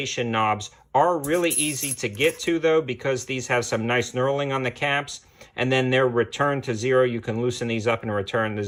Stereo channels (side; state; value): both; identical; correlation 1.00